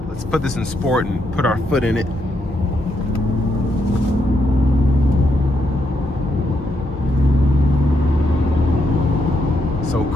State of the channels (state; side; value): normal; both; correlation 0.79